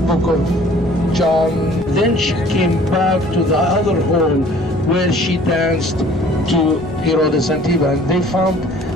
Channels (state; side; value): normal; both; correlation 0.53